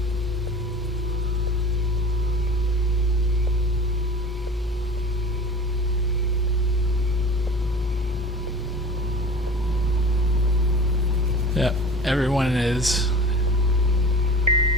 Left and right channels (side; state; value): both; normal; correlation 0.37